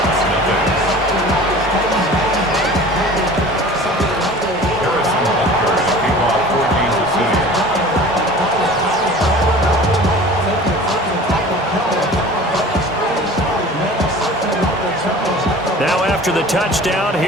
Now after the touchdown,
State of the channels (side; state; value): both; normal; correlation 0.42